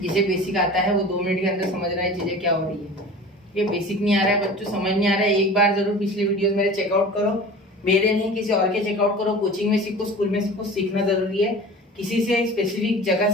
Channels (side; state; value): both; normal; correlation 0.38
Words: जिसे बेसिक आता है वो 2 मिनट के अंदर समझ रहा है चीजें क्या हो रही है। ये बेसिक नहीं आ रहा है बच्चों, समझ नहीं आ रहा है, एक बार जरूर पिछले वीडियोस मेरे चेकआउट करो, मेरे नहीं किसी और के चेकआउट करो, कोचिंग में सीखो, स्कूल में सीखो, सीखना जरूरी है, किसी से स्पेसिफिक जगह